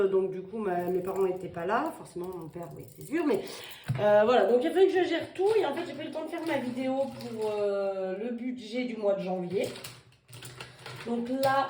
donc du coup mes parents n'étaient pas là, forcément mon père, oui c'est sûr, mais voilà, donc il a fallu que je gère tout et en fait j'ai pas eu le temps de faire ma vidéo pour le budget du mois de janvier. Donc là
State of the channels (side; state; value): both; identical; correlation 1.00